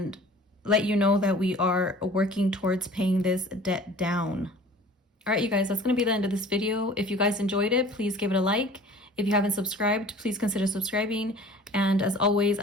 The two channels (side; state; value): both; normal; correlation 0.46